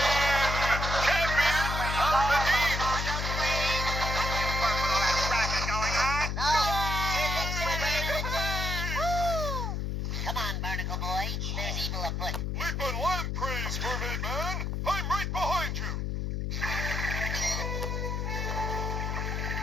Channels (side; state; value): left; noise; hum, 1 dB below the sound